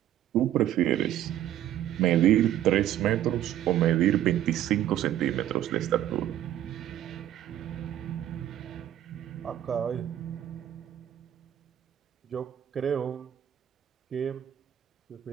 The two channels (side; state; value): left; quieter; 11.8 dB